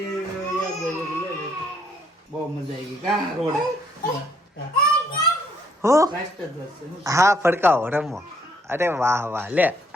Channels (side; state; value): both; normal; correlation 0.68